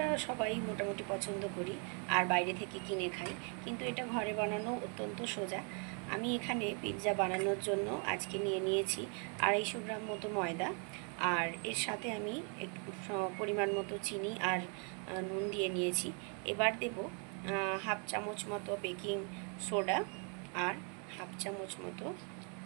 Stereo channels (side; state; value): left; quieter; 39.3 dB